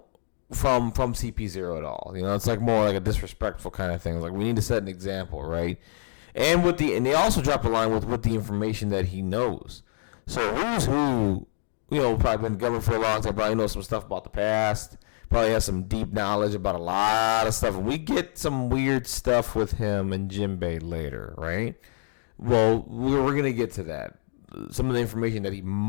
CP0 at all. It's like more like a disrespectful kind of thing. It's like, we need to set an example, right? And they also drop a line with the information that he knows. So Who's Who, probably been government for a long time, probably knows some stuff about the past, probably has some deep knowledge about a lot of stuff. And we get some weird stuff with him and Jinbei later, right? Well, we're going to get to that. Some of the information that he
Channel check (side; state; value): right; silent; digital silence